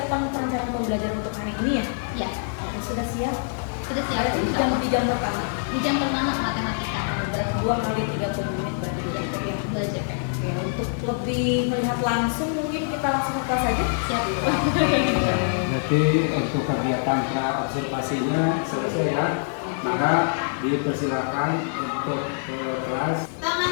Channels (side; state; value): right; silent; 62 dB below the other